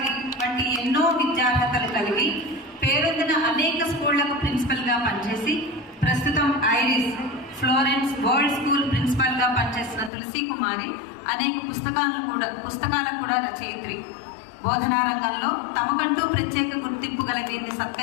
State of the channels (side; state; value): right; drops out; at 10.1 s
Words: వంటి ఎన్నో విద్యార్హతలు కలిగి పేరొందిన అనేక స్కూళ్లకు ప్రిన్సిపల్గా పనిచేసి ప్రస్తుతం ఐరిస్, ఫ్లోరెన్స్ వరల్డ్ స్కూల్ ప్రిన్సిపల్గా పనిచేసిన తులసి కుమారి అనేక పుస్తకాలకు కూడా రచయిత్రి. బోధనా రంగంలో తమకంటూ ప్రత్యేక గుర్తింపు కలిగి